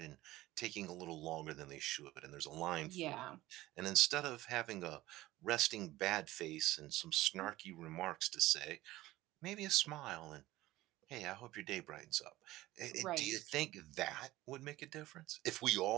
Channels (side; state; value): left; quieter; 17.1 dB